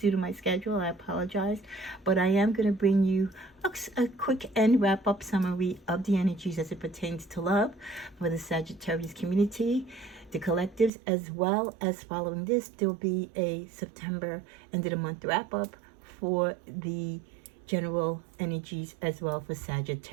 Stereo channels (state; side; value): drops out; left; at 10.9 s